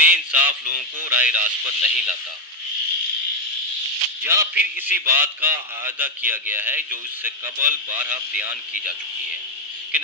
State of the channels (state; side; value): normal; both; correlation 0.04